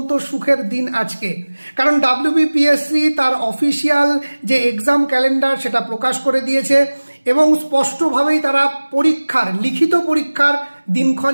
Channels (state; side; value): inverted; both; correlation -1.00